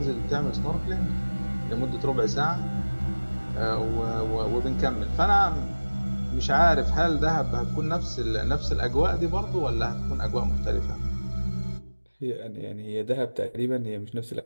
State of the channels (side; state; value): both; inverted; correlation -1.00